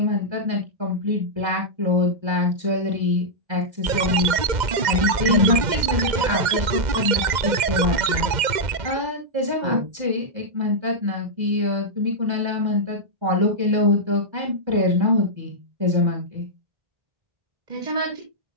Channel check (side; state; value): left; late; 2.0 ms